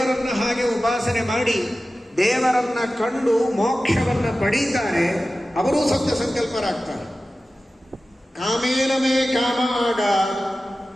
ಹಾಗೆ ಉಪಾಸನೆ ಮಾಡಿ ದೇವರನ್ನ ಕಂಡು ಮೋಕ್ಷವನ್ನು ಪಡೀತಾರೆ ಅವರೂ ಸತ್ಯ ಸಂಕಲ್ಪರಾಗ್ತಾರೆ. ಕಾಮೇನ ಮೇ ಕಾಮ ಆಗ,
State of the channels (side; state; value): both; normal; correlation 0.95